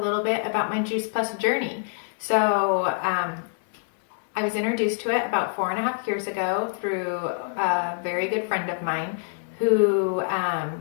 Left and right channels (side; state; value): right; silent; digital silence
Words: bit about my Juice Plus journey. I was introduced to it about 4.5 years ago through a very good friend of mine who